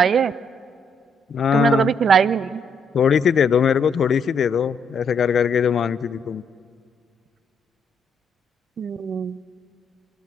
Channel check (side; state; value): both; normal; correlation 0.73